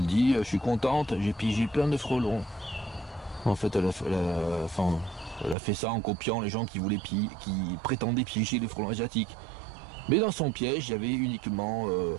dit je suis contente, j'ai piégé plein de frelons. En fait elle a fait ça en copiant les gens qui prétendaient piéger les frelons asiatiques. Mais dans son piège, il y avait uniquement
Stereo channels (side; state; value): left; drops out; at 5.6 s